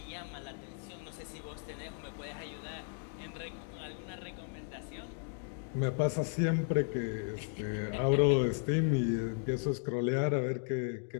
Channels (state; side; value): silent; right; 54 dB below the other